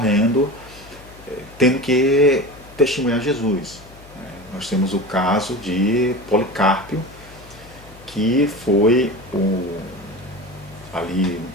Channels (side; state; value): left; noise; hum, 21 dB below the sound